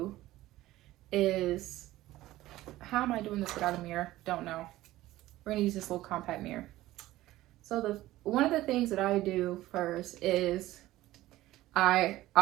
is, how am I doing this without a mirror? Don't know. We're gonna use this little compact mirror. So one of the things that I do first is I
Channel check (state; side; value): quieter; left; 16.2 dB